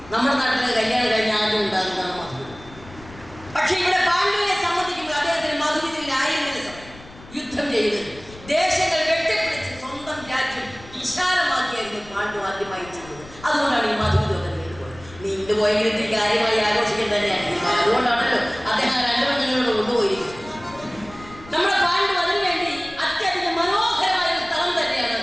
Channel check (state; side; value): noise; left; rumble, 19 dB below the sound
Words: നമ്മുടെ നാട്ടിലെ കല്യാണം കഴിഞ്ഞ ആദ്യം ഉണ്ടാകുന്നതാണ് മധുവിധം. പക്ഷെ ഇവിടെ പാണ്ഡുവിനെ സംബന്ധിക്കുമ്പോൾ അദ്ദേഹത്തിന് മധുവിധത്തിനായിരുന്നില്ല സമയം. യുദ്ധം ചെയ്ത് ദേശങ്ങൾ വെട്ടിപ്പിടിച്ച് സ്വന്തം രാജ്യം വിശാലമാക്കിയായിരുന്നു പാണ്ഡു ആദ്യമായി ചെയ്തത്. അതുകൊണ്ടാണ് ഈ മധുവിധമൊക്കെ നീണ്ടുപോയത്. നീണ്ടുപോയെങ്കിൽ കാര്യമായി ആഘോഷിക്കാൻ തന്നെയാണ്. അതുകൊണ്ടാണല്ലോ അദ്ദേഹം രണ്ടു പെണ്ണുങ്ങളോട് കൊണ്ടുപോയിരിക്കുന്നത്. നമ്മുടെ പാണ്ഡു അതിനു വേണ്ടി അത്യധികം മനോഹരമായ ഒരു സ്ഥലം തന്നെയാണ്